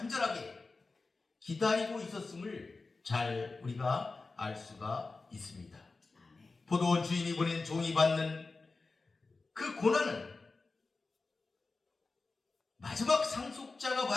기다리고 있었음을 잘 우리가 알 수가 있습니다. 포도원 주인이 보낸 종이 받는 그 고난은 마지막 상속자가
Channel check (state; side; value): quieter; right; 3.8 dB